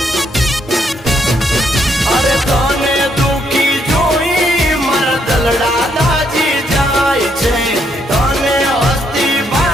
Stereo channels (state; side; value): normal; both; correlation 0.74